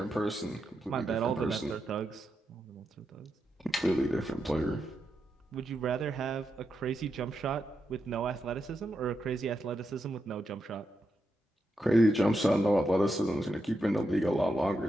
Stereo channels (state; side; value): normal; both; correlation 0.85